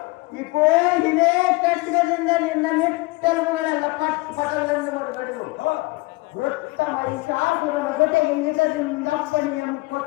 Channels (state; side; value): quieter; right; 23.6 dB